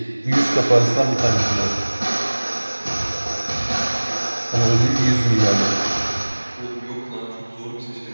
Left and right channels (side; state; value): both; inverted; correlation -1.00